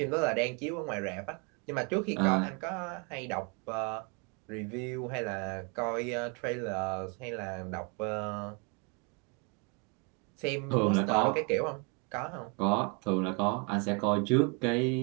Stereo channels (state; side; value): quieter; left; 32.1 dB